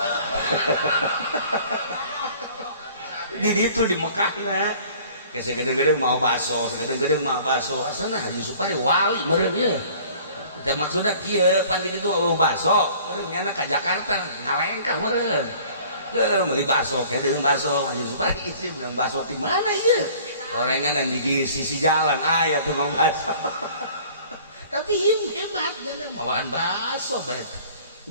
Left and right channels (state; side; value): inverted; both; correlation -0.50